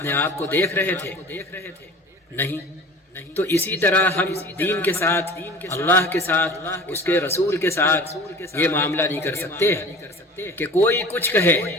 آپ کو دیکھ رہے تھے؟ نہیں۔ تو اسی طرح ہم دین کے ساتھ، اللہ کے ساتھ، اس کے رسول کے ساتھ یہ معاملہ نہیں کر سکتے کہ کوئی کچھ کہے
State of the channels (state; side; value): normal; both; correlation 0.41